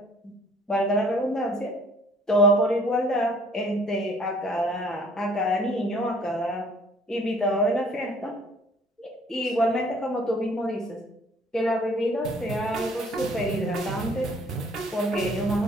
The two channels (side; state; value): both; normal; correlation 0.56